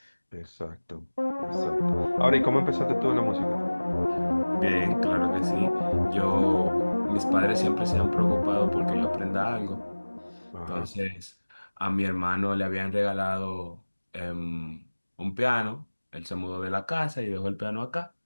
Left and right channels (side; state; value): both; inverted; correlation -1.00